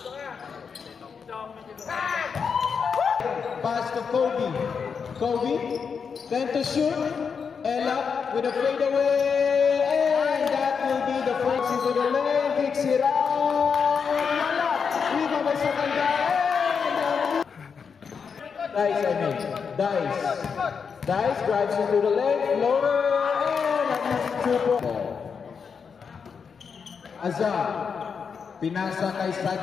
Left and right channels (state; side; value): quieter; right; 6.1 dB